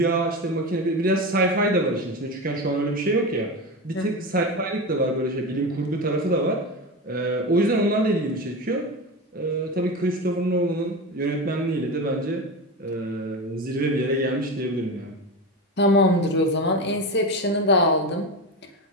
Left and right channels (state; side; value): normal; both; correlation 0.22